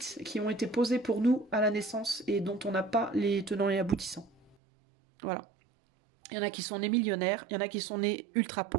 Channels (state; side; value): drops out; left; at 4.5 s